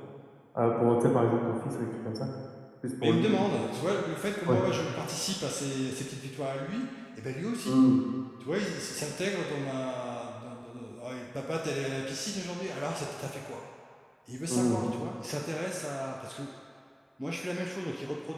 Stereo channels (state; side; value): identical; both; correlation 1.00